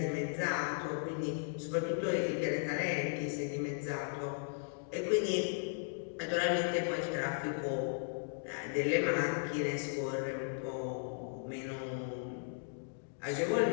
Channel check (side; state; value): right; silent; digital silence